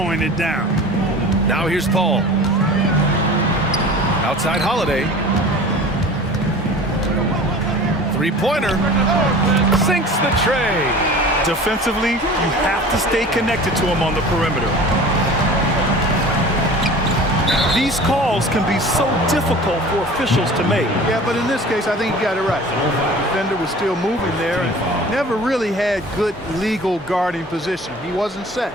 it down. Now here's Paul. Outside Holiday. Three-pointer. Sinks the tray. Defensively, you have to stay connected to him on the perimeter. These calls can be so difficult for officials to make. Yeah, but in this case, I think he got it right. The defender was still moving there and never really had good legal guarding position. He wasn't set.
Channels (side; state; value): both; normal; correlation 0.41